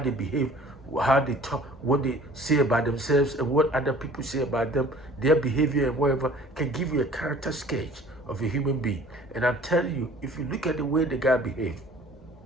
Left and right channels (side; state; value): both; normal; correlation 0.50